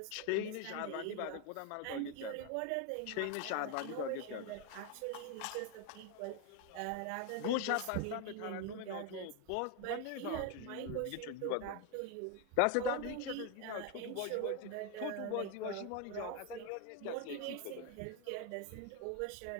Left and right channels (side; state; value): both; different; correlation 0.01